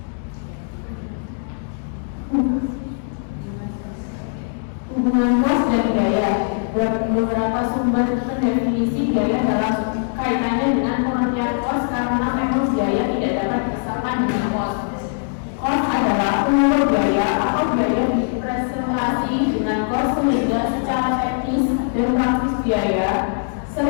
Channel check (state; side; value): silent; right; digital silence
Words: Hubungan kos dan biaya. Beberapa sumber mendefinisi biaya dalam kaitannya dengan pengertian kos karena memang biaya tidak dapat dipisahkan dengan kos. Kos adalah pengukur biaya atau biaya dipresentasi dengan kos sehingga secara teknis dan praktis biaya